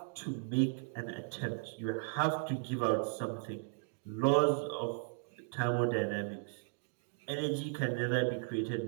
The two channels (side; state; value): left; silent; digital silence